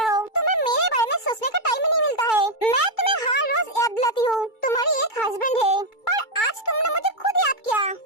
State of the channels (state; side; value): late; right; 2.3 ms